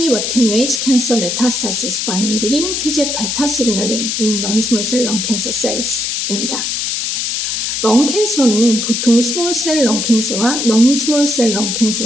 Attenuates Cancer Metastasis by Inhibiting TGF-beta Signaling in Non-Small Cell Lung Cancer Cells입니다. 렁캔서는 보통 스몰셀 렁캔서와 넌스몰셀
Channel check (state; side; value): noise; left; hiss, 1 dB below the sound